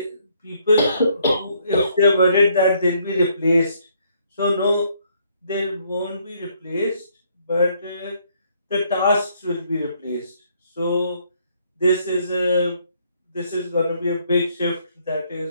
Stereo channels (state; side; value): inverted; both; correlation -0.68